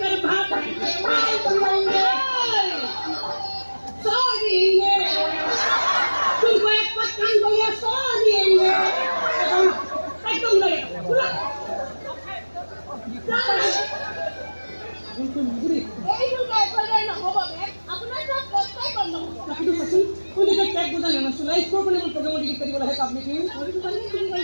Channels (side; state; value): both; inverted; correlation -1.00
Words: mal pienge. Sorry ये. तुमको एक पत्थर को ये sorry ये. एकदम लगे. पूरा. तुम मुझे এই দুটো করে না হবে আপনার সব কষ্টই বন্ধ হবে কিন্তু সসি কোন দিকে ট্যাগ বোঝা না সুলাই প্রবলেম প্রোগ্রাম ডিলিট করি বলা হয় আপনি কি